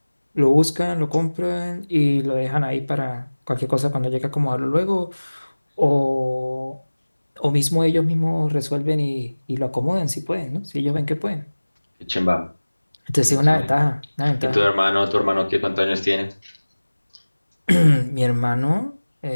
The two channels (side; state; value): both; inverted; correlation -1.00